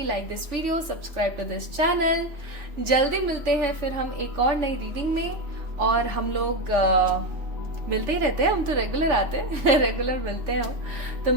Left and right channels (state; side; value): late; left; 3.5 ms